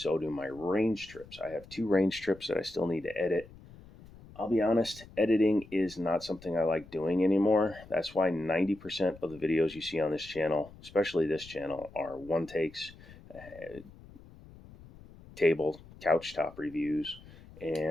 do my range trips. I have 2 range trips that I still need to edit. I'll be honest, editing is not something I like doing anymore. That's why 90% of the videos you see on this channel, especially this channel, are one takes, table, couch top reviews,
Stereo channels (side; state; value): left; noise; rumble, 20 dB below the sound